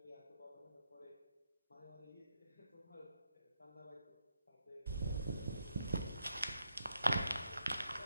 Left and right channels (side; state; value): both; inverted; correlation -0.81